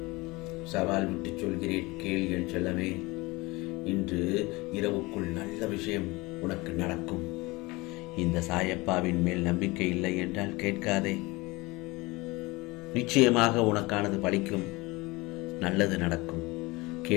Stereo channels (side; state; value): right; quieter; 23.0 dB